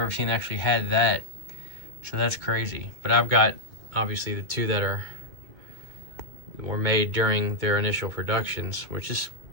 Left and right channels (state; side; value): late; left; 2.2 ms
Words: seen, actually had that. So that's crazy. But I've got, obviously, the two that were made during their initial productions, which is